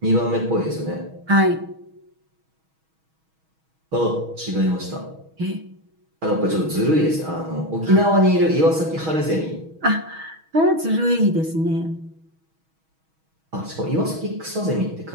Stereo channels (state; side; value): late; left; 6.3 ms